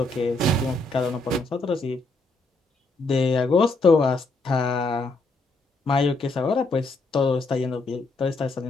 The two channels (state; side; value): quieter; right; 3.1 dB